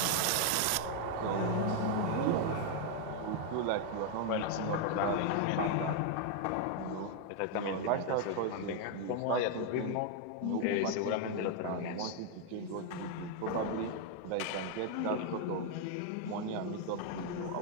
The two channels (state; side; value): different; both; correlation 0.00